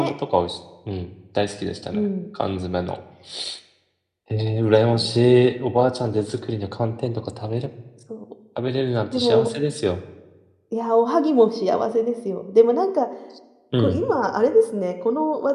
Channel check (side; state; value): both; identical; correlation 1.00